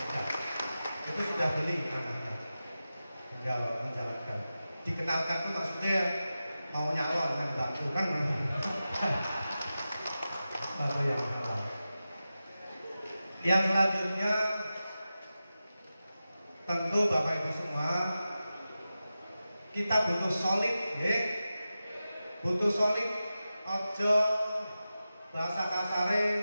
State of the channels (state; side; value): inverted; both; correlation -0.93